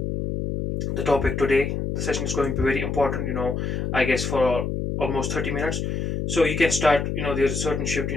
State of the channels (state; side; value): noise; left; hum, 2 dB below the sound